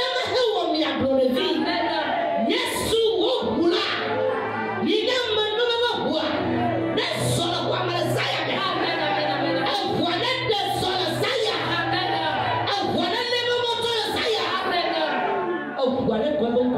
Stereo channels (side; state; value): both; identical; correlation 1.00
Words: hewa mi aglonevi. Yesu wo bula. Yiga manu mama bua. Nesolo kwa malazaya. Voilà de solo saya. Voilà le moments de saya. Voilà comment